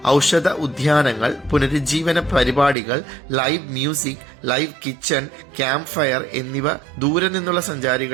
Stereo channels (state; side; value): drops out; left; at 2.8 s